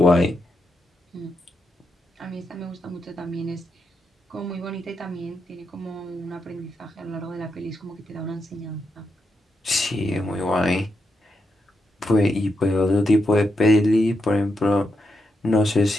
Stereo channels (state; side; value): normal; both; correlation 0.84